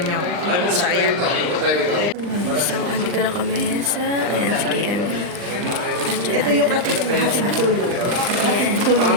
So ayan. So andito na kami sa, ayan, si KMV. Ito yung ating tulong. Ayan,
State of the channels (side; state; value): left; late; 39 ms